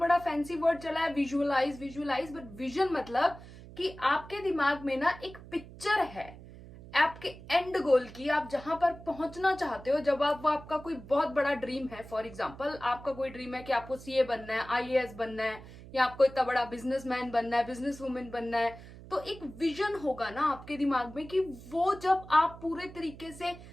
फैंसी वर्ड चला है, विजुअलाइज विजुअलाइज, बट विजन मतलब कि आपके दिमाग में ना एक पिक्चर है आपके एंड गोल की, आप जहां पर पहुंचना चाहते हो। जब आप वो आपका कोई बहुत बड़ा ड्रीम है, फॉर एग्जांपल आपका कोई ड्रीम है कि आपको सीए बनना है, आईएएस बनना है, या आपको इतना बड़ा बिजनेसमैन बनना है, बिजनेस वुमेन बनना है, तो एक विजन होगा ना आपके दिमाग में कि वो जब आप पूरे तरीके से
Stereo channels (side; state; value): right; noise; hum, 17 dB below the sound